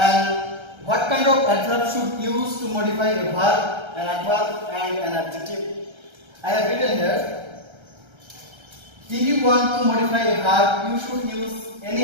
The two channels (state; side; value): late; left; 1.3 ms